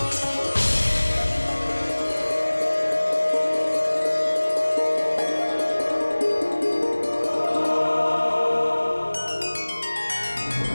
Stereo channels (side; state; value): both; inverted; correlation -1.00